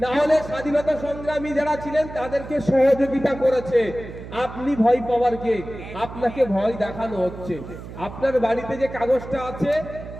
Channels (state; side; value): noise; right; hum, 12 dB below the sound